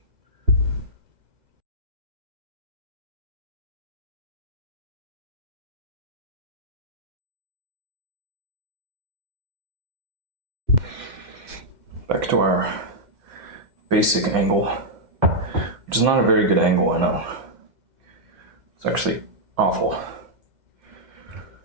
Back to our basic angle, which is not a very good angle, I know. It's actually awful.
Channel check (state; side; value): late; left; 2.3 ms